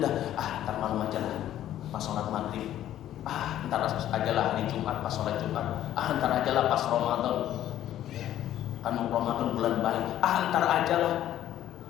ntar malam aja lah pas sholat maghrib, ntar aja lah hari Jumat pas sholat Jumat, ntar aja lah pas Ramadan, kan Ramadan bulan baik, ntar aja lah.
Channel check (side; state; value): right; quieter; 12.2 dB